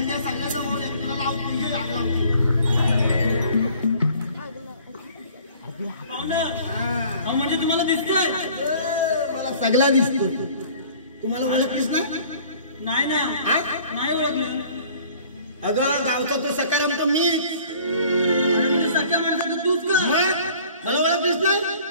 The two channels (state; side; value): inverted; both; correlation -0.51